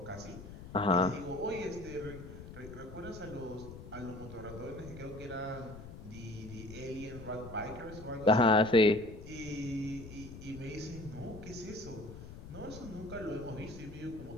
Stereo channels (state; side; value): noise; left; rumble, 13 dB below the sound